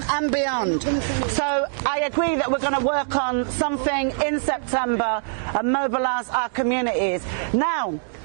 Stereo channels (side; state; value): left; silent; digital silence